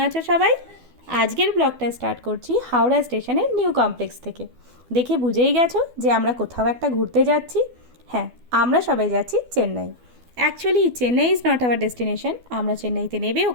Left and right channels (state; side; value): late; left; 12 ms